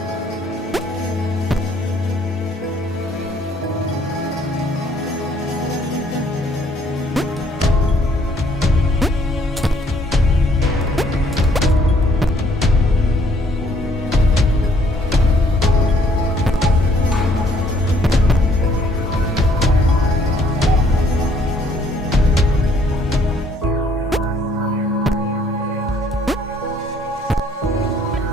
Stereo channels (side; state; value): both; normal; correlation 0.64